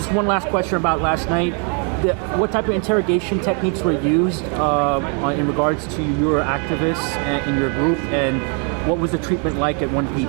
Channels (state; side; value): quieter; left; 38.9 dB